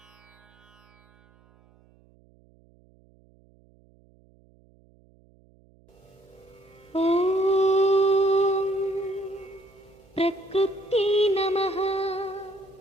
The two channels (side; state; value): right; noise; hum, 30 dB below the sound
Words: ఓం ప్రకృత్యై నమః